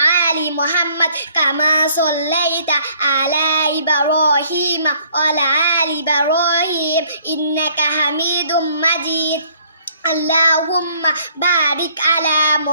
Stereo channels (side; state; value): both; inverted; correlation -0.61